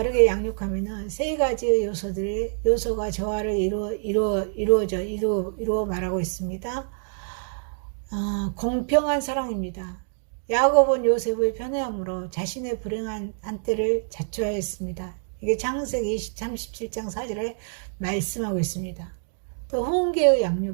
양육하면 세 가지의 요소가 조화를 이루어 말하고 있습니다. 공평한 사랑입니다. 야곱은 요셉의 편애함으로 자신의 불행한 한때를 자초하였습니다. 이게 창세기 37장 4절에 말씀하고 있습니다. 또 훈계의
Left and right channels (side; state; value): left; silent; digital silence